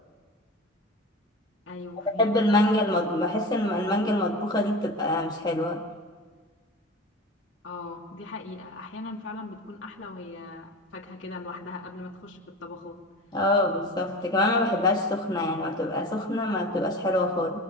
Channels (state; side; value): normal; both; correlation 0.31